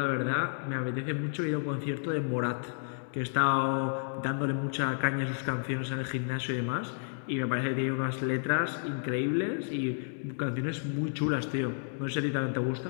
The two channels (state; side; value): silent; right; digital silence